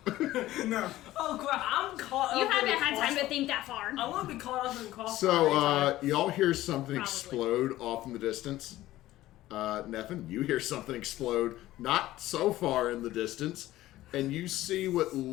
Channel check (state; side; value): quieter; right; 15.6 dB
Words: No. Oh crap! I'm caught. You up haven't in had time to crossfire. think that far. I want to be caught up in crossfire. So, y'all hear something Probably. explode off in the distance. Nefan, you hear something explode not so far in the distance, and you see what